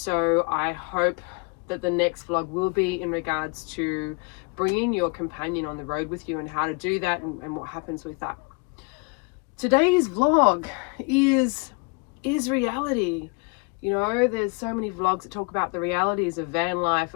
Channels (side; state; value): right; quieter; 32.0 dB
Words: I hope that the next vlog will be in regards to bringing your companion on the road with you and how to do that and what happens with that. Today's vlog is reality. You know, there's so many vlogs that talk about the realities of van life,